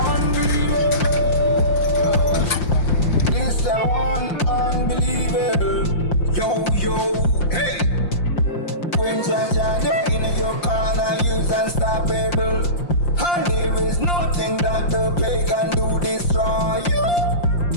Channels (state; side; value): late; right; 5.7 ms